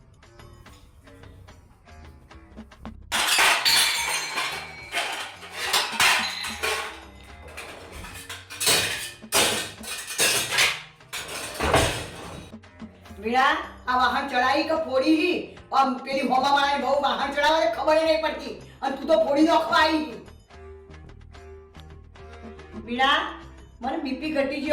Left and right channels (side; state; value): both; identical; correlation 1.00